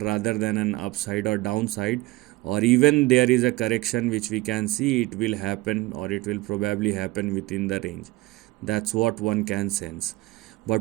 than an upside or downside, or even there is a correction which we can see it will happen, or it will probably happen within the range. That's what one can sense.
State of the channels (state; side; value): quieter; left; 19.9 dB